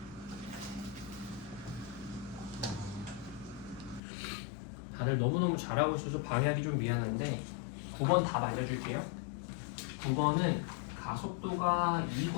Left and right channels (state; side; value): drops out; right; at 4.0 s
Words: 다들 너무너무 잘하고 있어서 방해하기 좀 미안한데 9번 답 알려줄게요. 9번은 가속도가